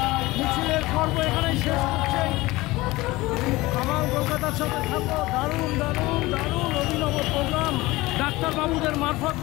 মিছিলের পর্ব এখানেই শেষ করছে। আমার কলকাতার সাথে থাকবো, দারুণ দারুণ দারুণ অভিনব প্রোগ্রাম ডাক্তারবাবুদের মারফত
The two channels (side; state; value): right; quieter; 20.1 dB